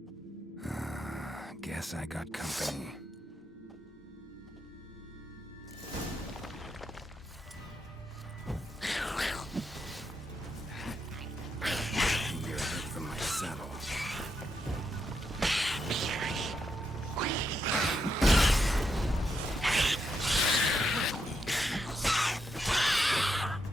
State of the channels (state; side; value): normal; both; correlation 0.82